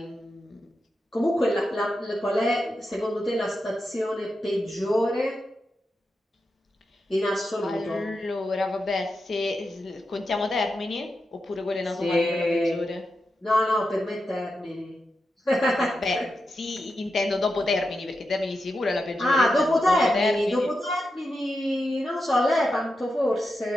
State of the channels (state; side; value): normal; both; correlation 0.88